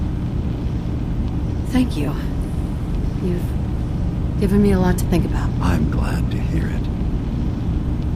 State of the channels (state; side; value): identical; both; correlation 1.00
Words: Thank you. You've given me a lot to think about. I'm glad to hear